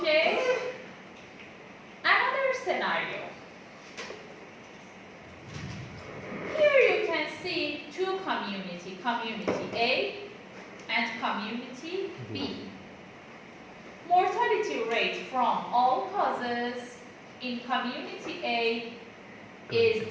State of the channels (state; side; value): identical; both; correlation 1.00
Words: Another scenario. Here you can see two community, community A and community B. Mortality rate from all causes in community A is